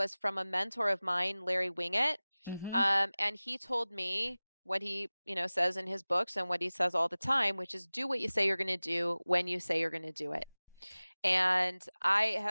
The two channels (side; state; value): both; inverted; correlation -0.99